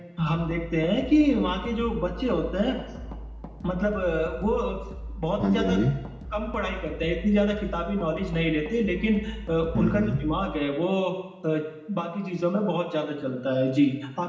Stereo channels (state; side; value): identical; both; correlation 1.00